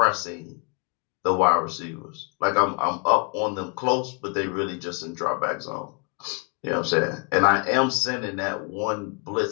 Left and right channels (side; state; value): right; quieter; 34.9 dB